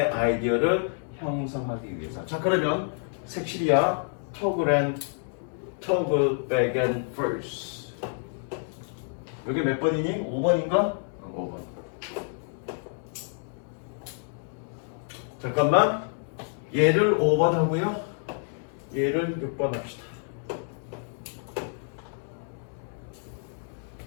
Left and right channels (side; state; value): right; silent; 56 dB below the other